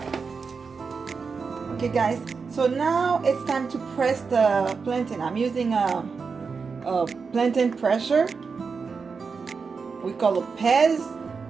Okay guys, so now it's time to press the plantain. I'm using a plantain presser. We call it Peze.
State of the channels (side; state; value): left; quieter; 5.1 dB